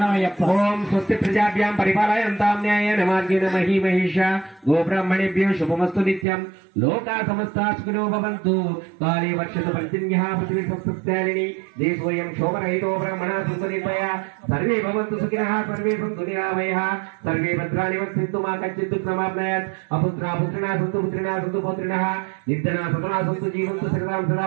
ఓం స్వస్తి ప్రజాభ్యాం పరిపాలయంతాం న్యాయేన మార్గేణ మహీమహేష గోబ్రాహ్మణేభ్యో శుభమస్తు నిత్యం లోకా సమస్తా సుఖినో భవంతు కాళే వర్షతు పర్జన్యః పృథివీ సంస్థాలిని దేశోయం శోభరహితో బ్రహ్మణా సంతు నిర్భయ సర్వే భవంతు సుఖినః సర్వే సంతు నిరామయః సర్వే భద్రాణి వక్షन्तు మా కచ్చిత్ దుఃఖమాప్నయాత్ అపుత్రా పుత్రిణా సంతు పుత్రిణా సంతు పౌత్రిణః నిర్ధనా సతనా సంతు జీవంతు సకలాం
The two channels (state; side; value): drops out; left; at 6.2 s